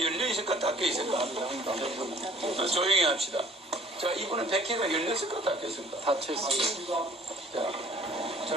열려 있을까 닫혀 있을까? 조용히 합시다. 자, 이분은 백회가 열렸을까 닫혀 있을까? 닫혀 있습니다. 자,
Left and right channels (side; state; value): both; normal; correlation 0.54